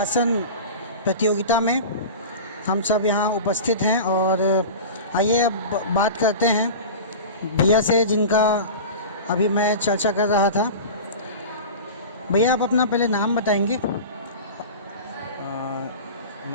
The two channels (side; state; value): both; inverted; correlation -0.32